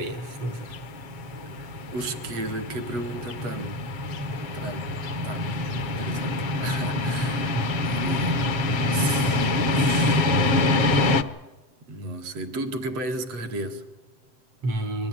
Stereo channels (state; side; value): late; left; 7.7 ms